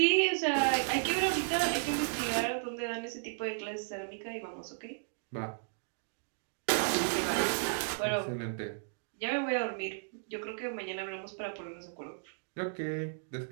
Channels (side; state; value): left; silent; digital silence